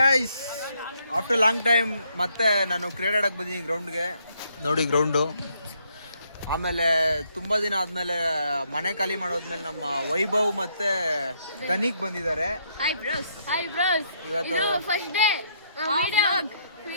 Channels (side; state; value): both; inverted; correlation -0.72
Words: after long time ಮತ್ತೆ ನಾನು ಕ್ರಿಕೆಟ್ ಆಡಕ್ಕೆ ಬಂದಿದ್ದೀನಿ ಗ್ರೌಂಡ್ಗೆ. ನೋಡಿ ಗ್ರೌಂಡು. ಆಮೇಲೆ ತುಂಬ ದಿನ ಆದಮೇಲೆ ಮನೆ ಖಾಲಿ ಮಾಡೋದ್ಮೇಲೆ ನಮ್ಮ ವೈಭವ್ ಮತ್ತೆ ಧನಿಕ್ ಬಂದಿದ್ದಾರೆ. ಇವತ್ತು ಫಸ್ಟ್ ಡೇ